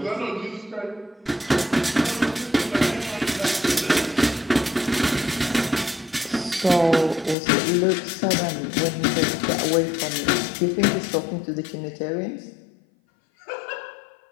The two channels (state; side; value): drops out; right; at 7.4 s